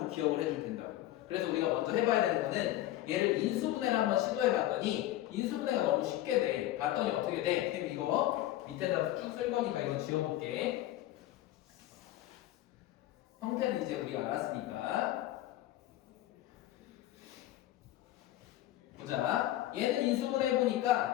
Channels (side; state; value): right; quieter; 14.6 dB